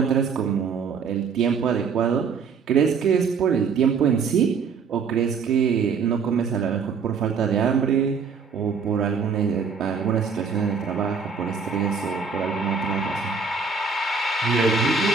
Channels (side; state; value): left; quieter; 5.5 dB